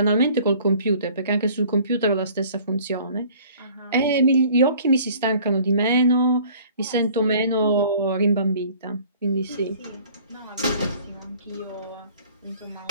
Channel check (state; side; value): inverted; both; correlation -0.52